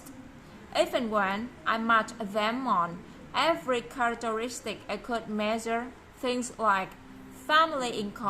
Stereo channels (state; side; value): identical; both; correlation 1.00